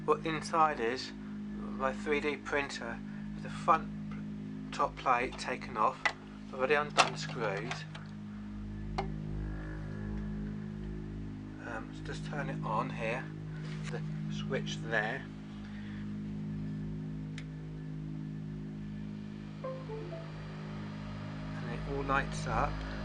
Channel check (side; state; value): both; identical; correlation 1.00